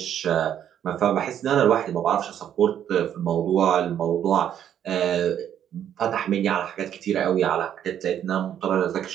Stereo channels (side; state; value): left; quieter; 9.9 dB